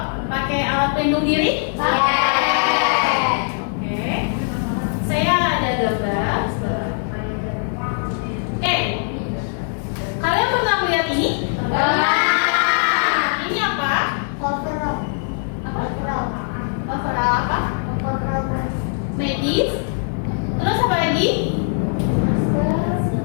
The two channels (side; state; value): right; silent; 65 dB below the other